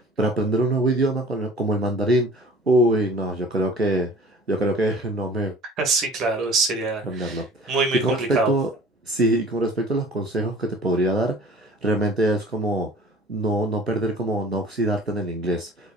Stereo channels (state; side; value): normal; both; correlation 0.46